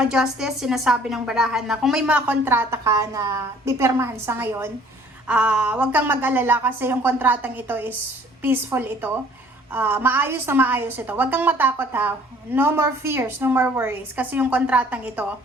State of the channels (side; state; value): both; normal; correlation 0.55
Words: Justice, sinasabi ng baraha na kung may mga kontrata ka na pipirmahan sa ngayon, huwag kang mag-alala kasi yung kontratang ito is peaceful ito. maayos na maayos ito. Huwag kang matakot ha. No more fears, no more worries. Kasi yung kontratang ito,